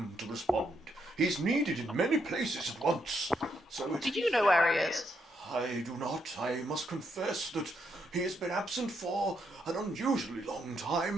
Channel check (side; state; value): both; normal; correlation 0.77